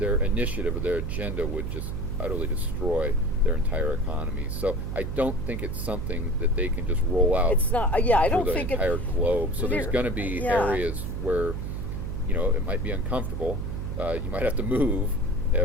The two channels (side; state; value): right; noise; hum, 4 dB below the sound